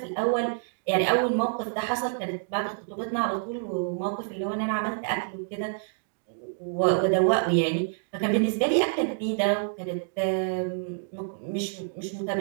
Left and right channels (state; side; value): silent; left; digital silence